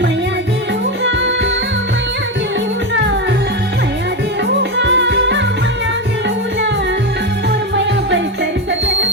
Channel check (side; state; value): both; normal; correlation 0.13